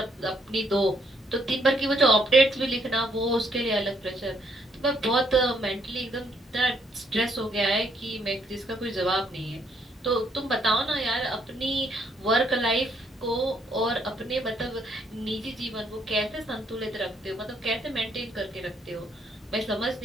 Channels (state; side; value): normal; both; correlation 0.71